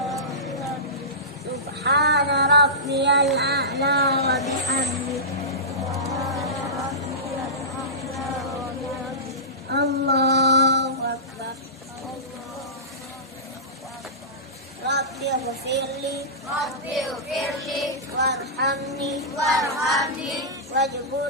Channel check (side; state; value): both; normal; correlation -0.19